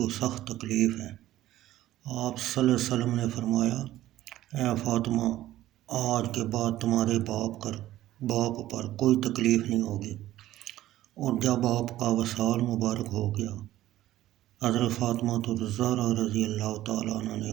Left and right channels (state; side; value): quieter; left; 14.5 dB